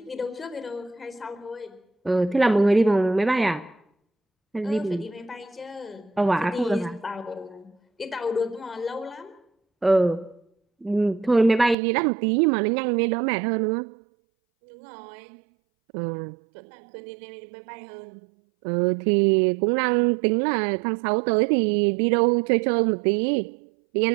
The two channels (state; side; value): drops out; left; at 11.8 s